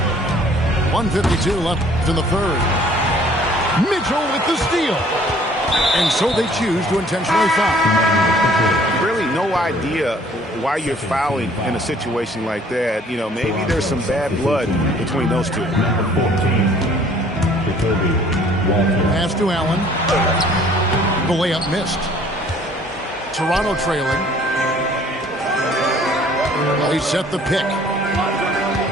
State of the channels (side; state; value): both; normal; correlation 0.56